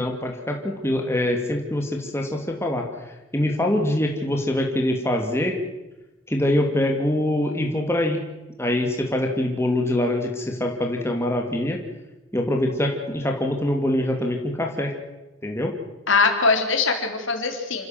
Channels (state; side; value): normal; both; correlation 0.56